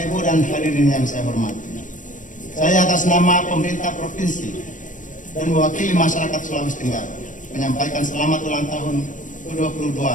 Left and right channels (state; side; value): late; right; 0.37 ms